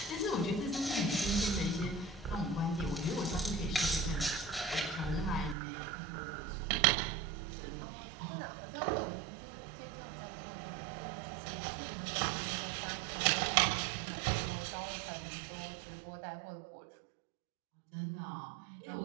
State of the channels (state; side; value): drops out; left; at 5.6 s